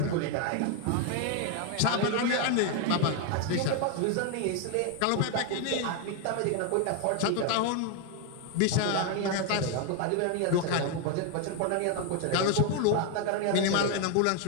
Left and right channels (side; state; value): both; different; correlation 0.01